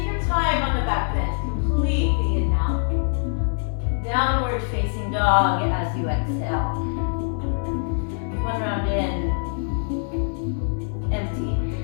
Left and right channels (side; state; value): right; silent; 63 dB below the other